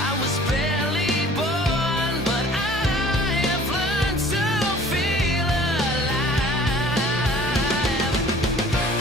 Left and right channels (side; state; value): both; normal; correlation 0.50